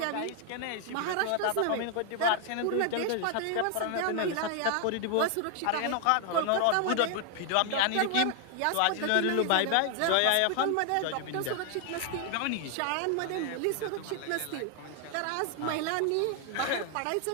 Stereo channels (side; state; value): both; different; correlation 0.00